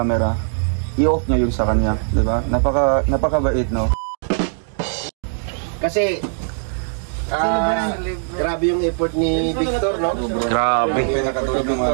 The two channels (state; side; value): silent; left; digital silence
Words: i-off niya yung sa kanya, di ba? Napakabait, no? Kasi grabe yung effort ni Victor, no? Grabe.